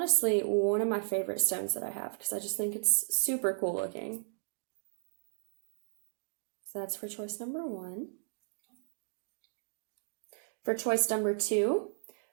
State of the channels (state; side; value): silent; left; digital silence